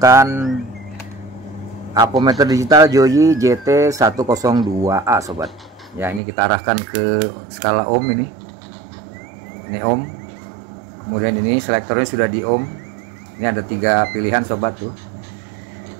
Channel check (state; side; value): drops out; left; at 6.2 s